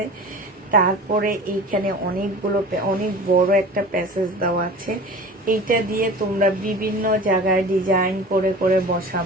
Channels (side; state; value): both; normal; correlation 0.38